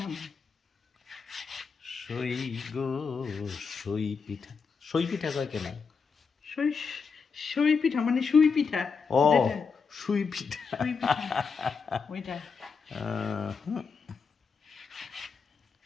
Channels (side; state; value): right; quieter; 5.5 dB